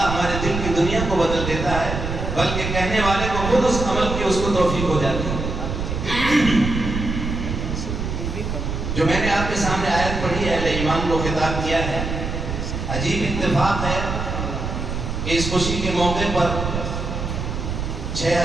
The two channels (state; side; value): noise; right; rumble, 4 dB below the sound